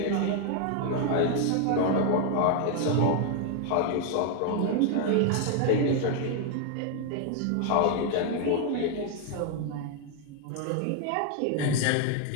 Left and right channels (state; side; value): different; both; correlation 0.00